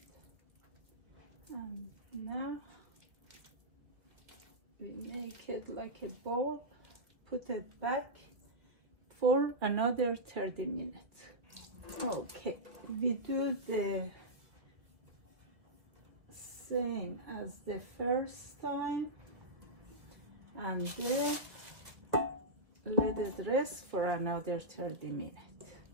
And now we make it like a ball, put it back for another 30 minutes. Okay, we do the same as the first time, and then let it rest for another 30 minutes.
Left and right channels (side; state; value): left; late; 1.8 ms